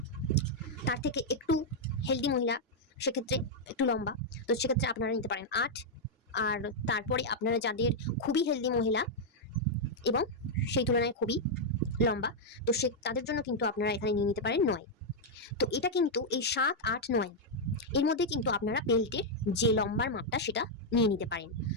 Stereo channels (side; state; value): both; normal; correlation -0.03